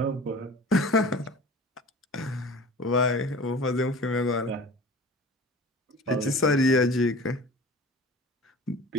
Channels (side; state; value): both; normal; correlation 0.40